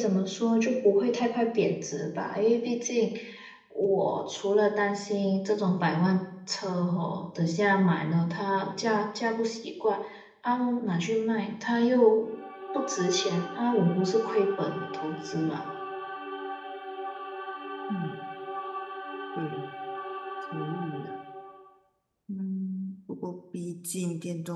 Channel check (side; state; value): both; identical; correlation 1.00